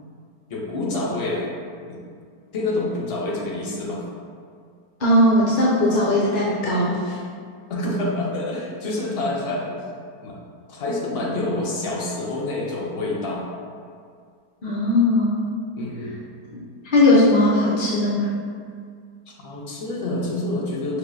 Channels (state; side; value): late; left; 4.4 ms